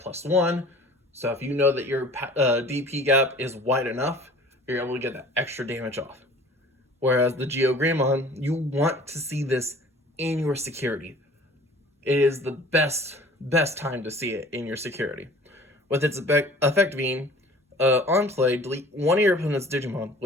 +1, so if you know that your DP gap is wide enough, you're able to get that extra damage off. Whereas the GeoGreymon, you want to see this in your security. It is the best time to see it in your security. With its effect being, on play, delete one of your opponent's Digimon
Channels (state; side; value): normal; both; correlation 0.47